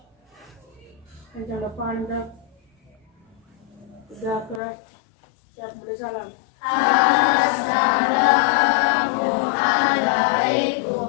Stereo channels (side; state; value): right; drops out; at 4.6 s